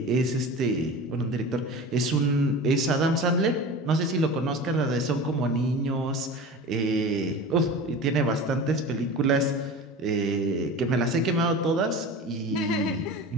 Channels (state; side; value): normal; both; correlation 0.34